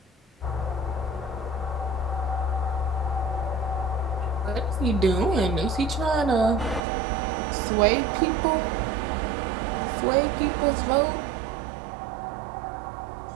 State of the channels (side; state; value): left; drops out; at 6.8 s